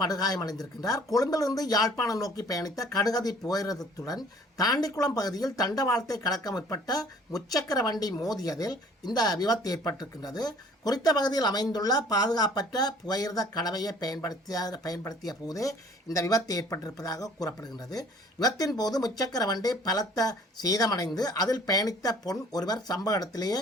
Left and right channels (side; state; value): both; normal; correlation 0.53